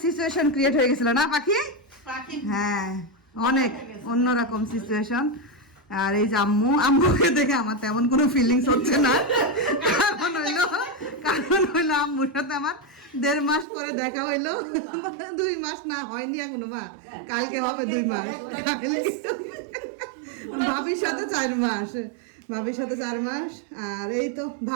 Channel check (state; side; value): drops out; left; at 13.7 s